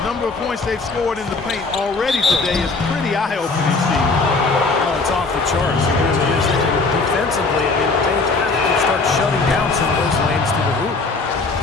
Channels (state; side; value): quieter; right; 3.9 dB